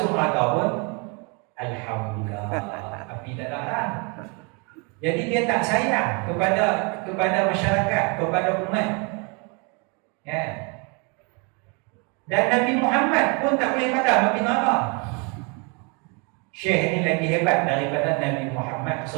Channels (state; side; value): quieter; left; 32.8 dB